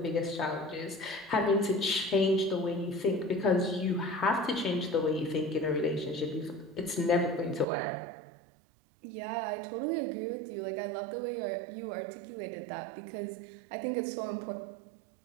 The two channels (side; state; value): left; drops out; at 7.7 s